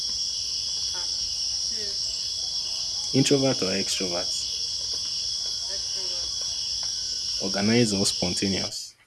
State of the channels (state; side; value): identical; both; correlation 1.00